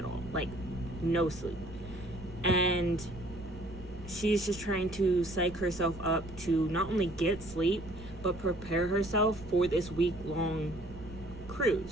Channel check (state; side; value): noise; right; rumble, 15 dB below the sound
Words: all, like no sleep. And she's just trying to psych herself up to not only get sleep, but prepare herself for this week-long